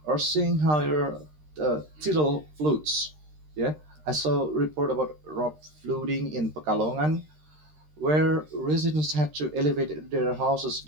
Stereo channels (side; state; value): left; late; 13 ms